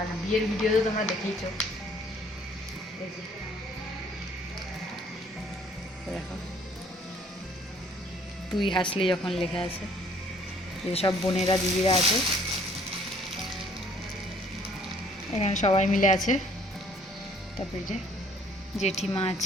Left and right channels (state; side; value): normal; both; correlation 0.59